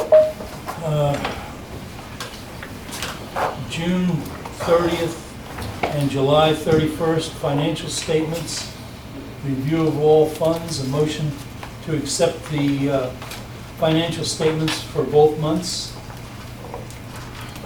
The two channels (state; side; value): identical; both; correlation 1.00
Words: June 30th and July 31st financial statements, review of all funds, a motion to accept the financial statements for both months.